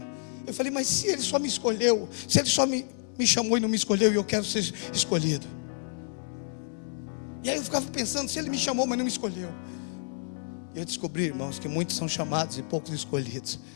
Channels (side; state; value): right; silent; 58 dB below the other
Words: Eu falei: mas se ele só me escolheu, se ele só me chamou e não me escolheu, e eu quero ser escolhido? E aí eu ficava pensando: se ele me chamou, mas não me escolheu. Eu descobri, irmãos, que muitos são chamados e poucos escolhidos.